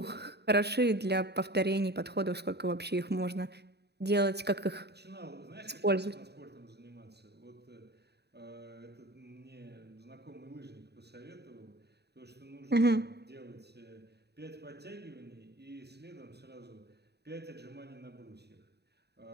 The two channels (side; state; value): left; late; 0.48 ms